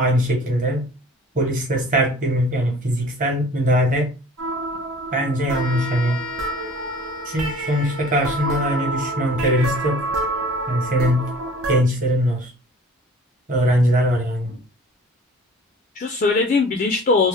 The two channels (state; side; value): normal; both; correlation 0.47